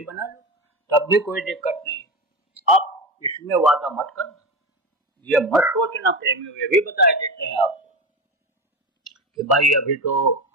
बना लो, तब भी कोई दिक्कत नहीं। अब इसमें वादा मत करना, ये मत सोचना प्रेमियों, ये भी बता देते हैं आपको कि भाई अभी तो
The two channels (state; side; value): normal; both; correlation 0.21